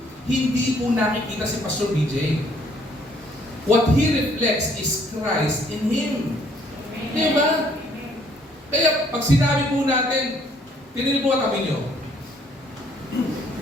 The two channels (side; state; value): both; normal; correlation 0.64